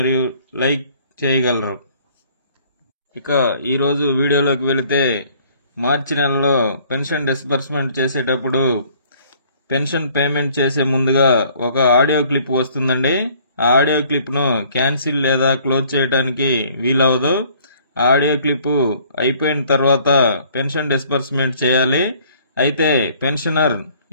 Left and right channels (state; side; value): inverted; both; correlation -0.58